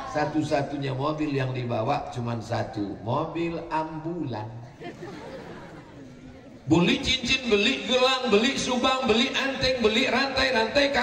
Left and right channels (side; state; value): both; identical; correlation 1.00